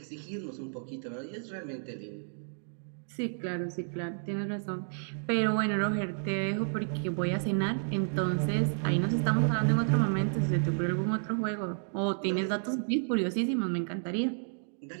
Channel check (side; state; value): left; silent; digital silence